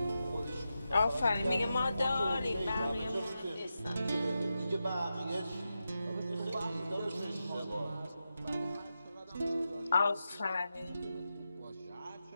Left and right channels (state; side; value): inverted; both; correlation -0.89